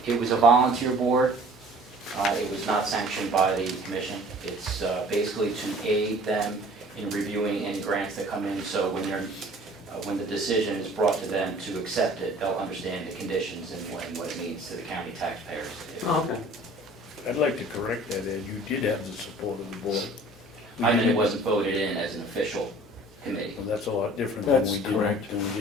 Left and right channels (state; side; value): normal; both; correlation 0.49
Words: It was a volunteer board. It was not sanctioned by the commission. It's basically to aid them in reviewing any grants that come in, so when the decision is brought to them to accept it, they'll understand the conditions and what it means to the county taxpayers. Oh, okay. I'd like to correct that, Ed, you did have the support of the board. I mean, it wasn't voted in as an official committee. Well, that's a lot different than That's we correct.